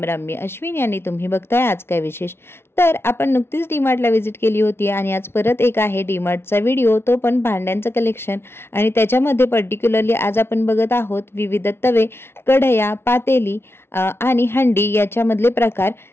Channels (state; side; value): late; right; 0.12 ms